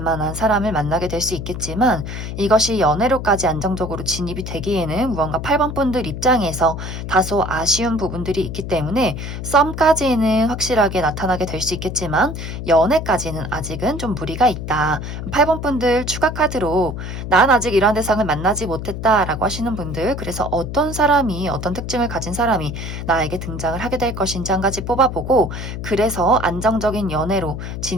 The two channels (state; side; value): noise; left; hum, 7 dB below the sound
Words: 사람을 만나게 될 수 있겠지만 이것이 연애로까지 안정적으로 진입이 되기에는 무언가 8번 분들 입장에서 다소 아쉬운 부분들이 있기 때문에 썸까지는 확실하게 나타나게 될 수 있겠지만 연애까지는 아직은 좀 무리가 있다. 8번 분들 추가 카드로 난 아직 이러한 대상을 만나지 못했다라고 하시는 분들 그래서 어떤 사람이 어떤 특징을 가진 사람이 나에게 등장을 하게 될 것인지 한 가지 뽑아보고 그래서 안정적인 연애로